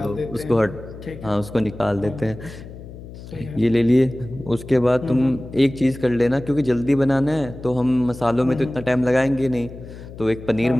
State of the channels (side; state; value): left; noise; hum, 14 dB below the sound